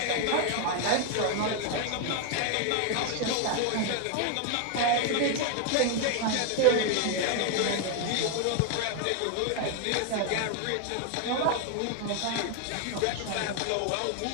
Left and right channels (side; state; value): both; different; correlation 0.01